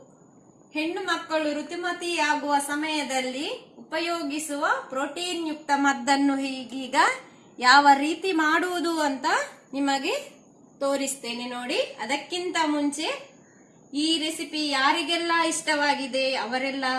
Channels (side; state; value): both; identical; correlation 1.00